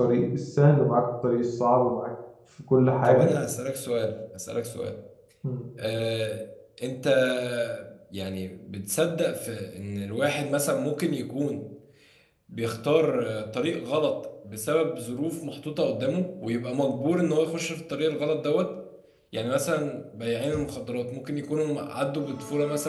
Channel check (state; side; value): identical; both; correlation 1.00